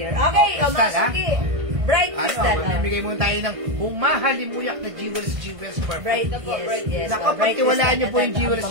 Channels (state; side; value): late; left; 1.5 ms